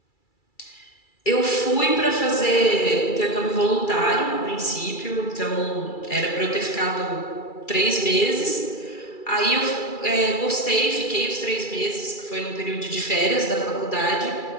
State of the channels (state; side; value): late; right; 2.3 ms